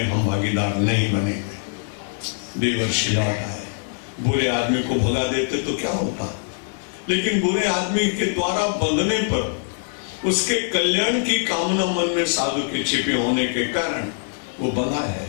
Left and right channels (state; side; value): silent; right; 56 dB below the other